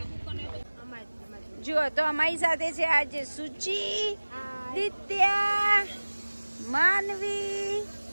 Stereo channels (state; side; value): inverted; both; correlation -1.00